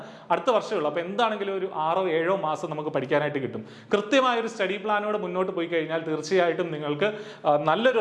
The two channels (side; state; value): both; identical; correlation 1.00